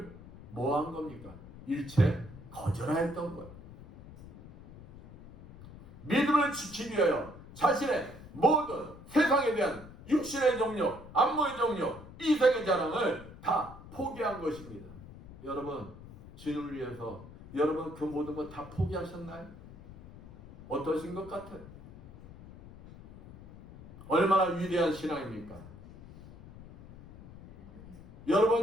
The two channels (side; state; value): left; noise; rumble, 17 dB below the sound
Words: 뭐 한 겁니까? 일체 거절하였던 거예요. 믿음을 지키기 위하여 자신의 모든 세상에 대한 육신의 정욕, 안목의 정욕, 이생의 자랑을 다 포기한 것입니다. 여러분, 주님을 위해서 여러분 그 모든 것 다 포기하셨나요? 어떠신 것 같아요? 얼마나 위대한 신앙입니까?